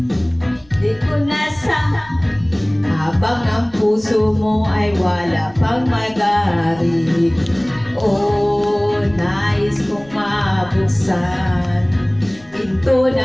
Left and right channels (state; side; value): noise; left; rumble, 26 dB below the sound